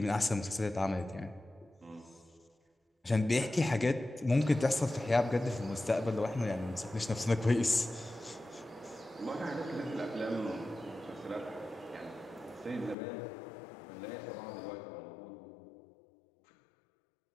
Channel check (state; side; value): drops out; right; at 13.0 s